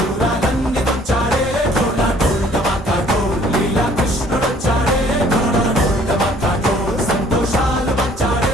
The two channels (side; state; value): both; normal; correlation 0.57